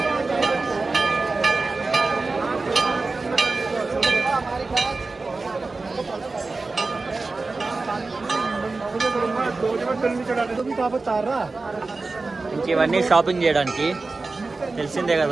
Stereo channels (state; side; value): quieter; left; 3.7 dB